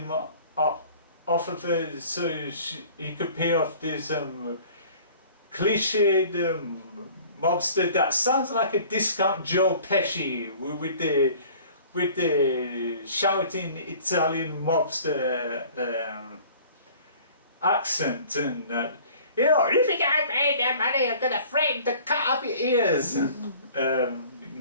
off of her, so he could pay off this cliched mobster that sounds like a discount Joe Pesci with the shouting Italian mobster accent and. You know, if you can't pay that money, I'm gonna threaten to cut off your ears.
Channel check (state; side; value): inverted; both; correlation -0.49